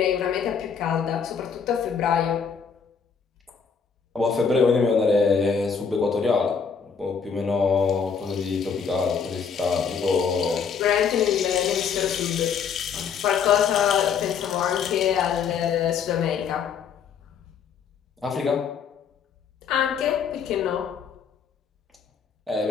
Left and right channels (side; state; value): right; quieter; 6.4 dB